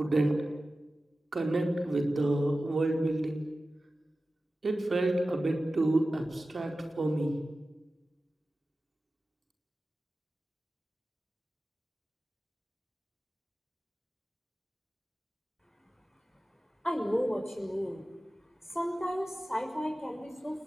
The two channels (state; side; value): normal; both; correlation 0.95